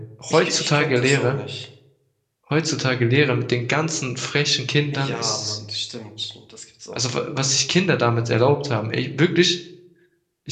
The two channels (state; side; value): identical; both; correlation 1.00